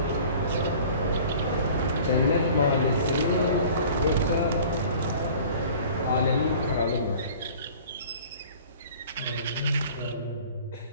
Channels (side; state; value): both; inverted; correlation -0.46